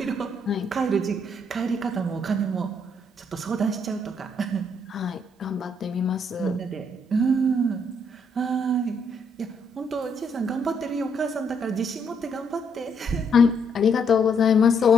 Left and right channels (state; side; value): normal; both; correlation 0.72